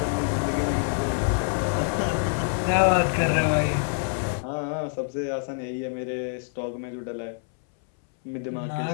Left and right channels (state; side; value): silent; right; 60 dB below the other